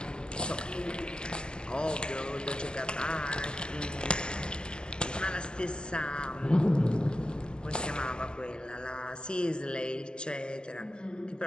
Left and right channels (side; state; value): right; late; 0.047 ms